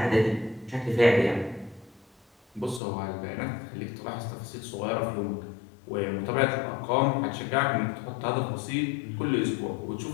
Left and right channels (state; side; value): drops out; right; at 2.8 s